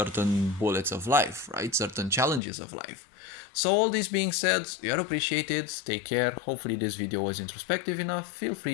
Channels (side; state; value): right; drops out; at 2.4 s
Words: bullets of life, right? Certain challenges of life. So all this being said, you are appreciated. Take care. Hopefully this video was introspective enough. Feel